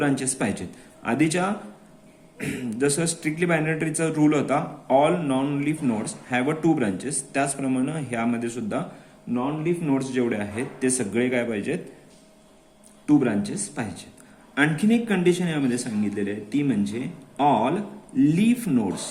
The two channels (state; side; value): identical; both; correlation 1.00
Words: पाहिजेत. आधीच्या जसं स्ट्रिक्टली बायनरी ट्रीचा रूल होता, all non leaf nodes have a 2 branches, त्याचप्रमाणे ह्यामध्ये सुद्धा नॉन लीफ नोड्स जेवढे आहेत ते सगळे काय पाहिजेत, 2 ब्रांचेस पाहिजेत. आणखीन एक कंडिशन यामध्ये सांगितलेली आहे, ती म्हणजे all leaf